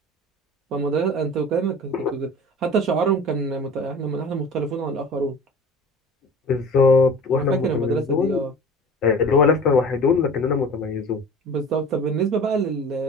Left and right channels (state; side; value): normal; both; correlation 0.40